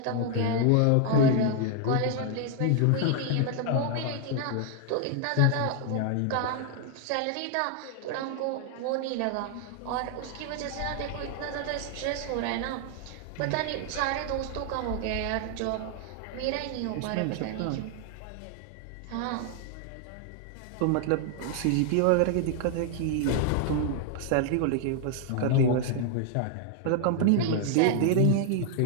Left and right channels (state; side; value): different; both; correlation 0.00